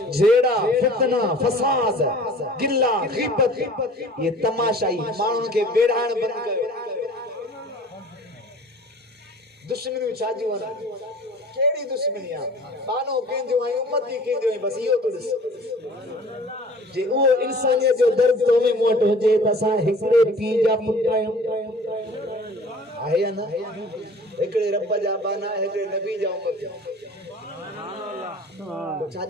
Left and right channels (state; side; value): normal; both; correlation 0.46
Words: जेड़ा फितना फसाद गिल्ला गीबत ये तमाशाई माण्हुनि के बेड़ाण बंद कयो दुश्मनी छाजी वना केड़ी दुश्मनी आ बानो केंजो आई उम्मती केंजो आई बस इयो तो दिस जे वो इंसानियत जो दर्द तो में मोट हो जे तसा हिकड़े पी जा पुटायो आहे ना हिकड़े रब जा बाना हिकड़े नबी जा उम्मत तो